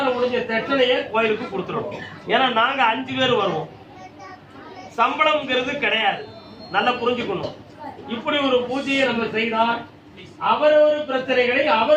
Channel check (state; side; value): identical; both; correlation 1.00